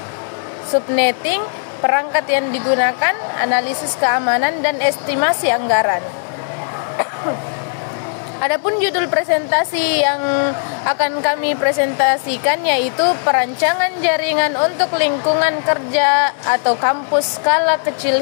subnetting, perangkat yang digunakan, analisis keamanan, dan estimasi anggaran. Adapun judul presentasi yang akan kami presentasikan yaitu perancangan jaringan untuk lingkungan kerja atau kampus skala kecil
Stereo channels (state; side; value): silent; right; digital silence